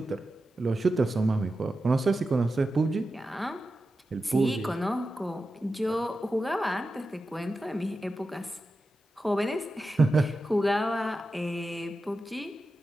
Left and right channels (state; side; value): normal; both; correlation 0.92